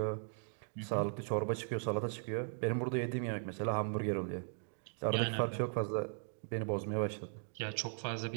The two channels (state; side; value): silent; left; digital silence